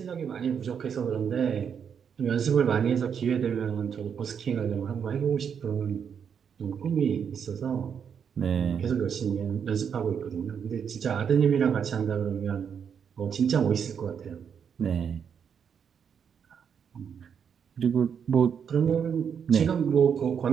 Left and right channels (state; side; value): quieter; left; 7.4 dB